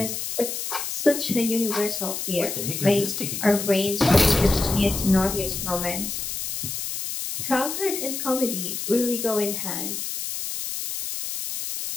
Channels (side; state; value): left; noise; hiss, 4 dB below the sound